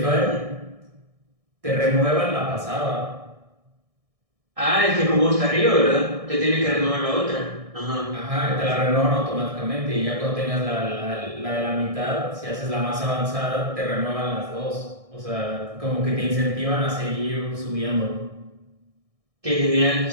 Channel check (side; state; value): left; late; 1.6 ms